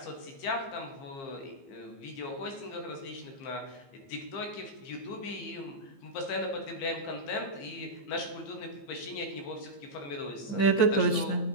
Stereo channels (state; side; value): late; right; 15 ms